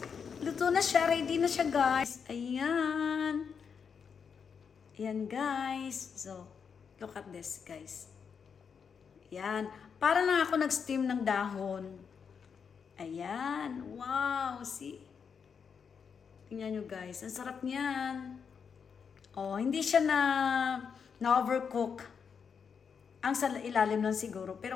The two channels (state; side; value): quieter; right; 6.5 dB